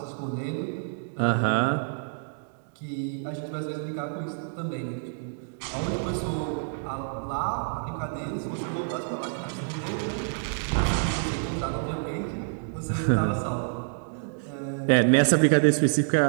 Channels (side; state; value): left; silent; digital silence